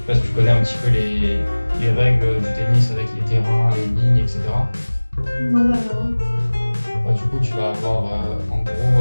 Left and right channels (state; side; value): inverted; both; correlation -1.00